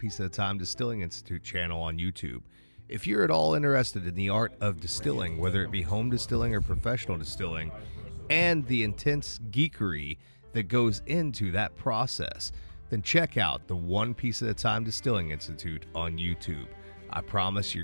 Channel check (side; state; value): both; inverted; correlation -1.00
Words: at a Time Distilling Institute channel on YouTube. If you're at all interested in the art of distilling, whether it be home distilling or professional distilling, and the intense geekery that goes into that process, then check out the One Piece at a Time Distilling Institute on YouTube. I promise